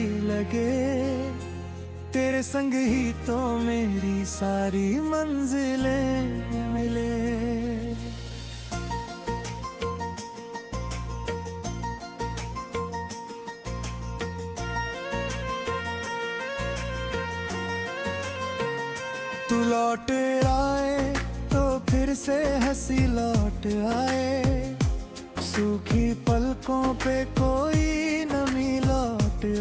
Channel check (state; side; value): identical; both; correlation 1.00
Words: लगे, तेरे संग ही तो मेरी सारी मंजिलें मिले। तू लौट आए तो फिर से हंसी लौट आए, सूखी पलकों पे कोई नमी लौट